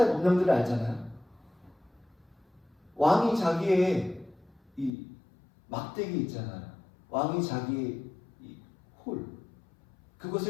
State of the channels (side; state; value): right; drops out; at 4.9 s